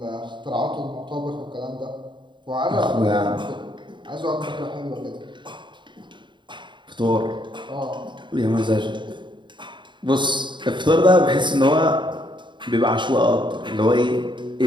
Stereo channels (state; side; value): late; left; 0.23 ms